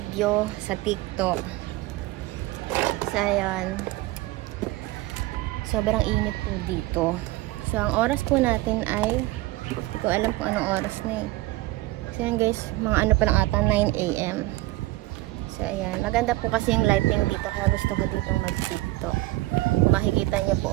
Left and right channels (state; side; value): quieter; left; 18.7 dB